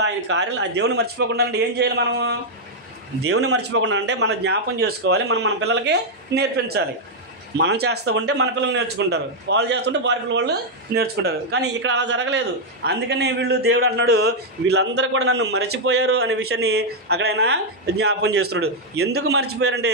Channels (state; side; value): normal; both; correlation -0.02